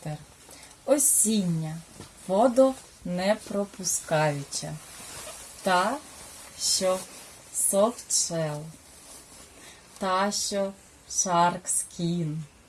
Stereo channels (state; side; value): identical; both; correlation 1.00